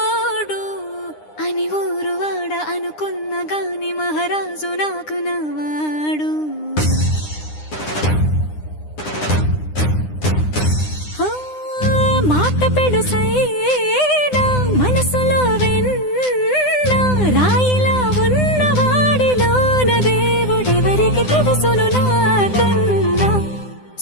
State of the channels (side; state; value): right; late; 9.8 ms